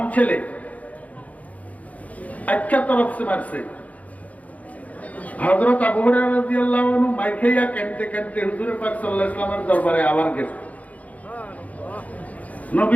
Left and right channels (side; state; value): right; late; 0.070 ms